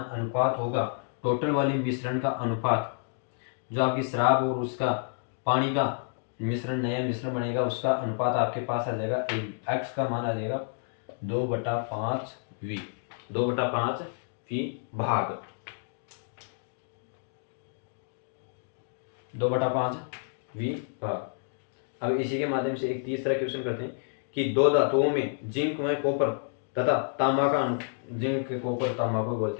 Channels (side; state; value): right; silent; digital silence